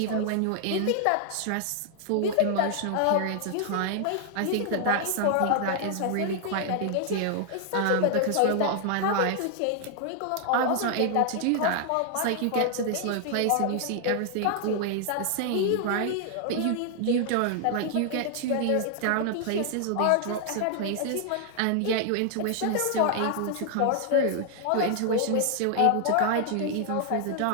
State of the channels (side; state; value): both; different; correlation 0.00